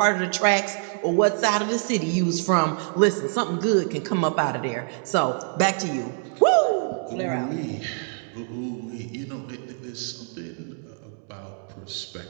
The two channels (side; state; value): left; silent; 56 dB below the other